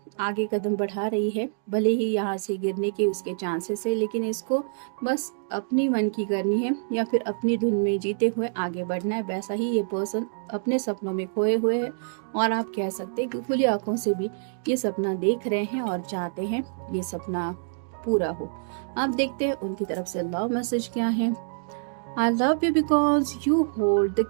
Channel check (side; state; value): left; silent; digital silence